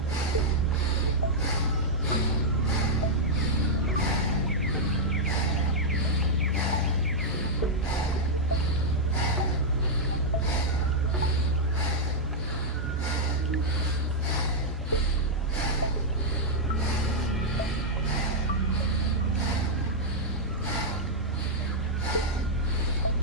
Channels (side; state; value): both; normal; correlation -0.05